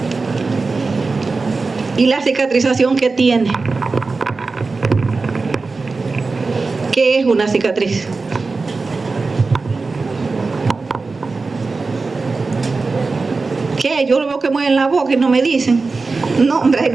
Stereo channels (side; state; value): left; quieter; 4.0 dB